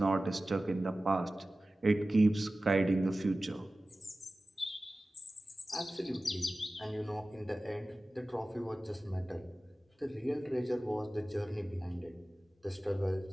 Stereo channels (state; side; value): normal; both; correlation 0.96